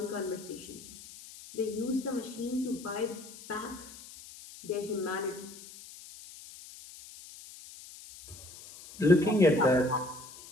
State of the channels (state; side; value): noise; left; hiss, 17 dB below the sound